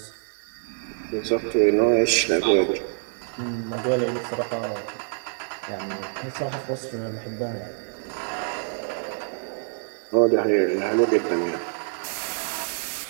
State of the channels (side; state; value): left; silent; 57 dB below the other